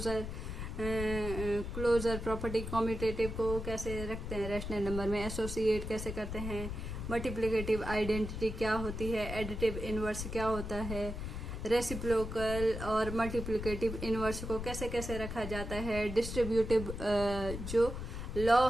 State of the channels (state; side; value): noise; left; rumble, 6 dB below the sound